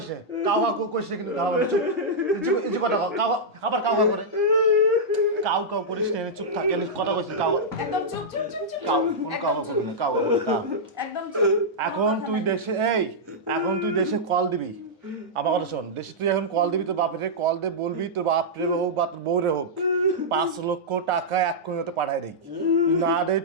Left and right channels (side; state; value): both; normal; correlation -0.09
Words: কাওয়া করিস কিন্তু কাওয়া চুপ ইজি কথা কাওয়া আবার কাওয়া করে কাউ করিস না চুপ থাকে কথা কইছিস কাওয়া একদম চুপ কাওয়া করবি না কাওয়া করবি না একদম চুপ এখন তুই দেশে কল দিবি আমার কথা শোন দেশে তুই এখন কল দিবি তোর বাপরে কল দে বলবি তোর বাপরে হোক বা তোর বউরে হোক 5 লক্ষ টাকা এক্ষুনি হতে পাঠাই দেই না দেয়